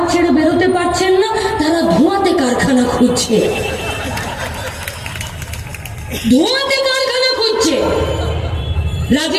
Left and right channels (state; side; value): identical; both; correlation 1.00